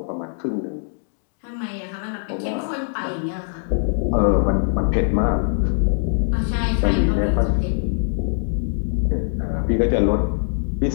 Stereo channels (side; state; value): right; silent; digital silence